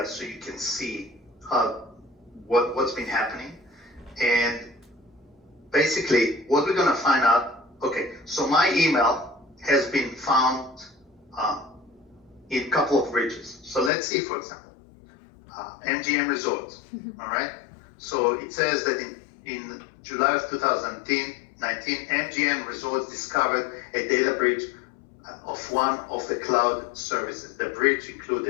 so you can see what's been happening. And basically, what we're going to find out, okay, so my email has been found in a couple of breaches. So let's see, for example, MGM Resorts, all right? So it says that in July of 2019, MGM Resorts discovered a data breach of one of the cloud services. The breach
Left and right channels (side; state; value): right; drops out; at 13.9 s